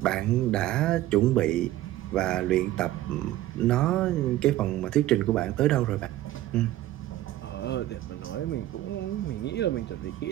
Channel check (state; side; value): quieter; left; 14.7 dB